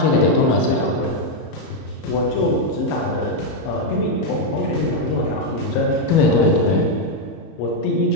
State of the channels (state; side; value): late; right; 31 ms